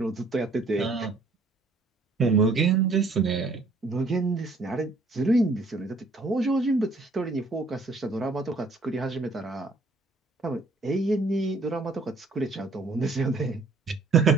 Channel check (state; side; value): quieter; left; 3.5 dB